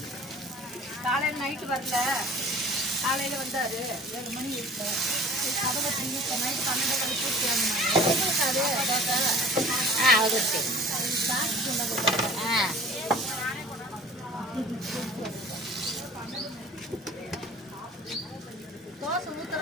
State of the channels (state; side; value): normal; both; correlation 0.46